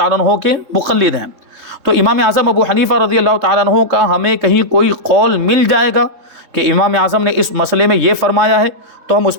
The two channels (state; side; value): late; left; 3.8 ms